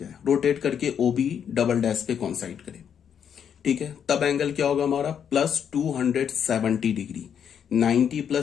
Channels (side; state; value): right; quieter; 8.2 dB